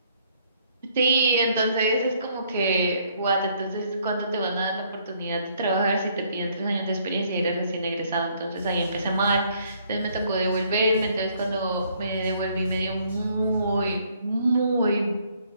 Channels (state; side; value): inverted; both; correlation -0.66